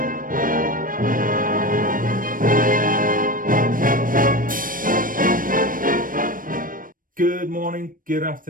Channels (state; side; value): late; left; 0.40 ms